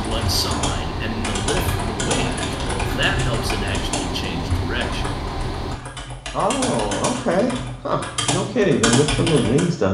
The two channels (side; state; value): both; identical; correlation 1.00